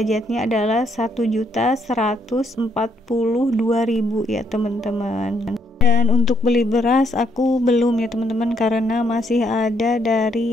adalah 1.142.000 ya teman-teman. Dan untuk beli beras aku belum ya teman-teman, karena masih ada dari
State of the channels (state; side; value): normal; both; correlation 0.73